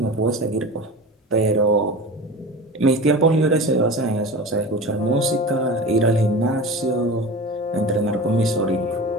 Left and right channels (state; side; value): normal; both; correlation 0.32